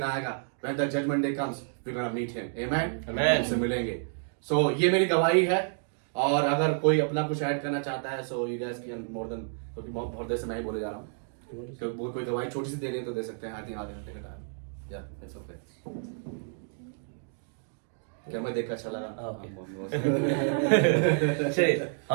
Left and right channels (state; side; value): silent; left; 58 dB below the other